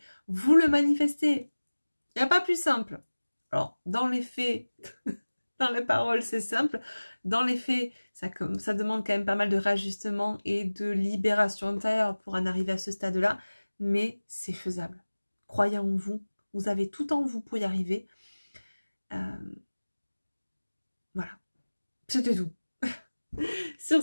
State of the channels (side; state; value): both; inverted; correlation -1.00